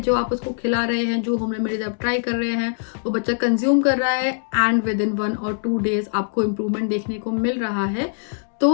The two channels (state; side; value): silent; right; digital silence